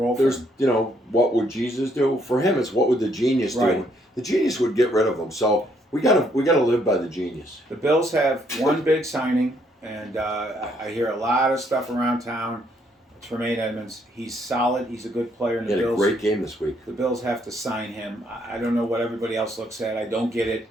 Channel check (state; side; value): normal; both; correlation 0.70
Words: roll for There's, him. what would Jesus do? For him, it's what would the genius do? Right. The genius would get rid of him. So we gotta live by the genius. The Bills have one big signing, and I hear a lot of stuff around town. Tremaine Edmonds, he's solid. He's a good player in He the had a Bills. great game this week. The Bills have to sign him. I don't know what everybody else looks at. I don't get it.